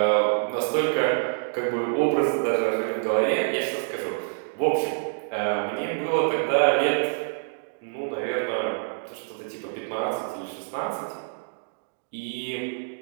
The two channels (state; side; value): silent; left; digital silence